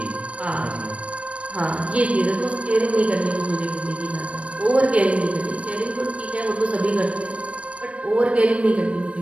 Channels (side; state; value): left; late; 0.063 ms